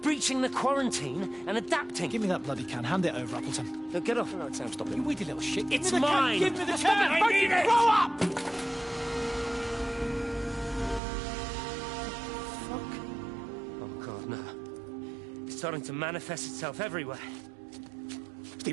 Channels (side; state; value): left; drops out; at 11.0 s